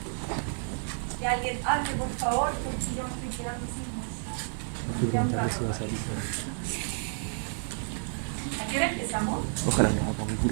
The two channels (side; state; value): left; silent; 58 dB below the other